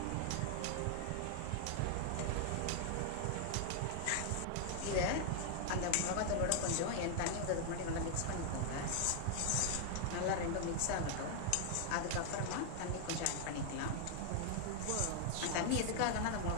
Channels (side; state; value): both; different; correlation 0.00